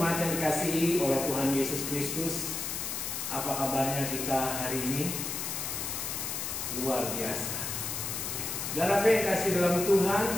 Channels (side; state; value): left; noise; hiss, 3 dB below the sound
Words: yang dikasihi oleh Tuhan Yesus Kristus. Apa kabarnya kita hari ini? Luar biasa. Saudara yang kasih dalam Tuhan,